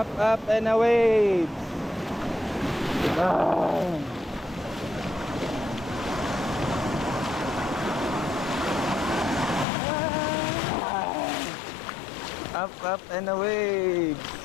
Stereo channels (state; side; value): drops out; right; at 9.7 s